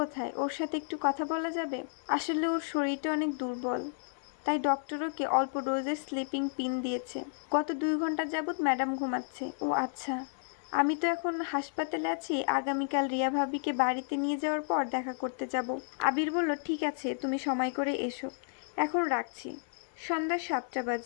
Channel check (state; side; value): silent; right; 56 dB below the other